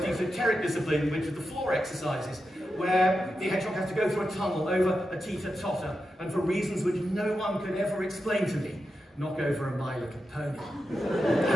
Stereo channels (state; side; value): normal; both; correlation 0.89